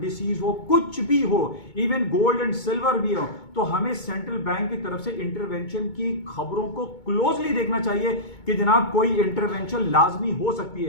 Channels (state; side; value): late; right; 2.2 ms